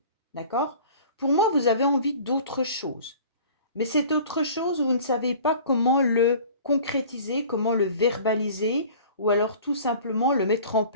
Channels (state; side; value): inverted; both; correlation -0.45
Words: D'accord? Pour moi, vous avez envie d'autre chose. Mais cette autre chose, vous ne savez pas comment le concrétiser, comment le verbaliser, ou alors tout simplement le mettre en